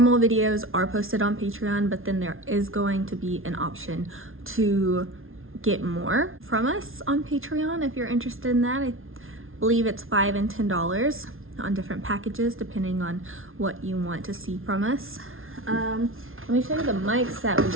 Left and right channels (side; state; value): left; late; 0.60 ms